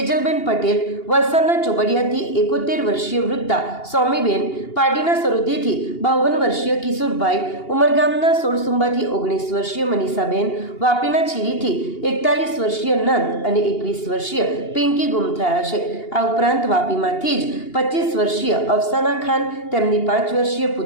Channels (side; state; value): right; late; 2.8 ms